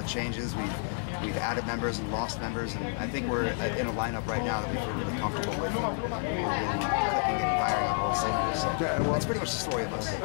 of changes. We've added members and lost members, and I think we're in a lineup right now that we feel really comfortable with. We're really clicking and firing on all cylinders. So that's pretty much the story of us.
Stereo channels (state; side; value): silent; right; 58 dB below the other